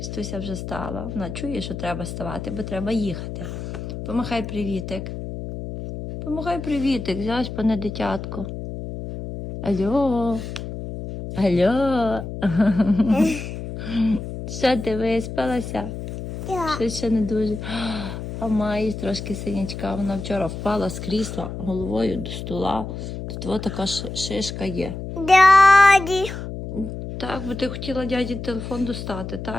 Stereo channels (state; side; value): noise; left; hum, 8 dB below the sound